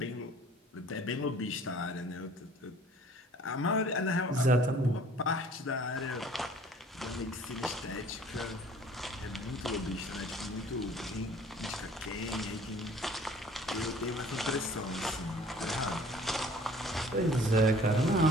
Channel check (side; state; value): both; normal; correlation 0.52